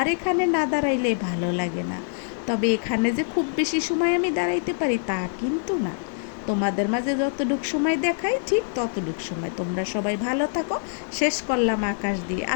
এখানে না দাঁড়াইলে ভালো লাগে না, তবে এখানে যে খুব বেশি সময় আমি দাঁড়াইতে পারি তা কিন্তু না। তোমাদের মাঝে যতটুক সময় দেখাই ঠিক ততটুক সময়। তোমরা সবাই ভালো থাকো। শেষ করলাম আকাশ দিয়ে।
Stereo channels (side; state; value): right; silent; 59 dB below the other